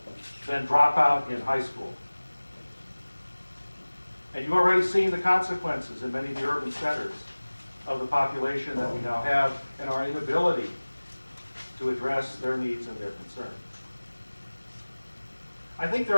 than drop out in high school. And you've already seen the consequences in many of the urban centers of the population that we now have and our inability to address their needs and their concerns. I think there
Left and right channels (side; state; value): both; inverted; correlation -1.00